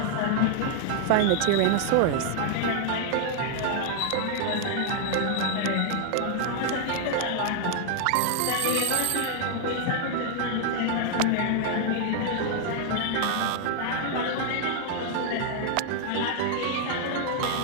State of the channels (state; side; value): different; both; correlation 0.00